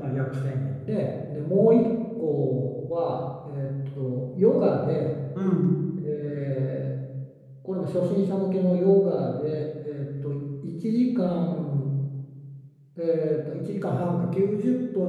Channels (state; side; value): identical; both; correlation 1.00